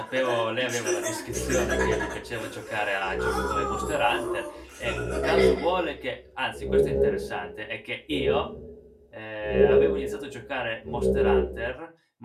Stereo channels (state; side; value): identical; both; correlation 1.00